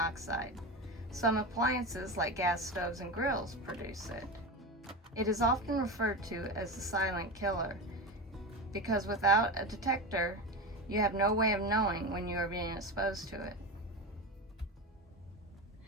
Some appliances like gas stoves and grills produce it. It is often referred to as the silent killer because without a detector, you have no way of knowing when you are being exposed to it.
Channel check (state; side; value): normal; both; correlation 0.22